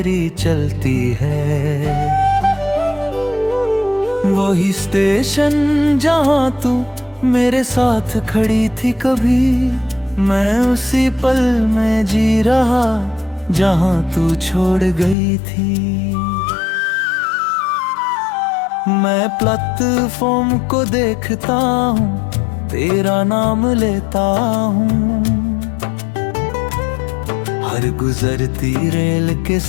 चलती है। वही स्टेशन जहाँ तू मेरे साथ खड़ी थी कभी, मैं उसी पल में जी रहा जहाँ तू छोड़ गई थी। मैं प्लेटफॉर्म को देखता हूँ, तेरा नाम लेता हूँ। हर गुजरती रेल के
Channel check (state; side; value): drops out; right; at 15.2 s